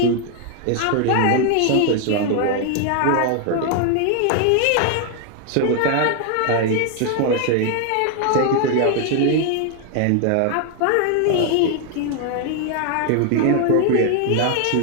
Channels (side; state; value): both; different; correlation 0.00